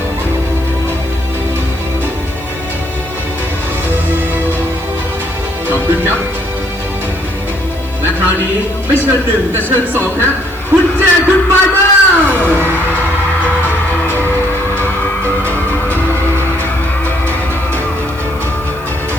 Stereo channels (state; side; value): noise; right; hiss, 23 dB below the sound